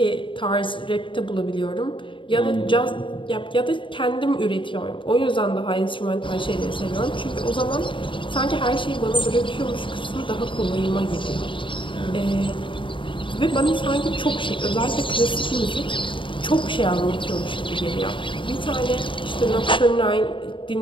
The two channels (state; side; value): late; right; 0.24 ms